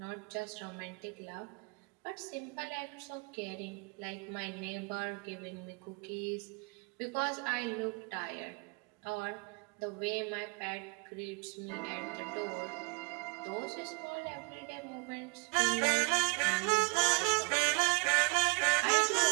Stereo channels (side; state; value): left; quieter; 32.2 dB